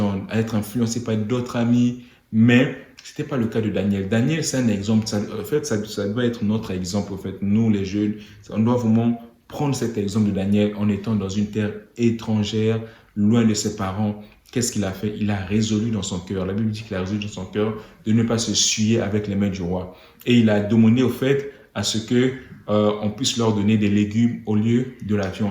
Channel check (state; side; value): identical; both; correlation 1.00